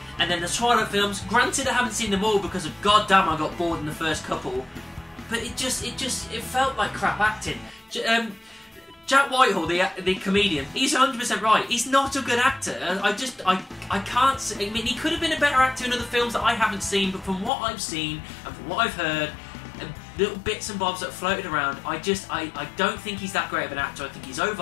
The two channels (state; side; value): drops out; right; at 17.5 s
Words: And then the Twilight films, granted I haven't seen them all because of goddamn I got bored in the first couple, but it felt like crap acting. Jack Whitehall, the comedian, he's 100% right. He's not a good actor. I can't say, I mean, he could have been a better actor in other films that I haven't seen, but from what I've seen and from what I've heard, and little bits and bobs that floated around, I don't think he's that great of an actor. I think he's